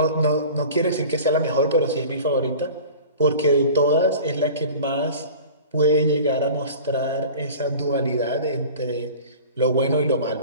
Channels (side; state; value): both; inverted; correlation -0.40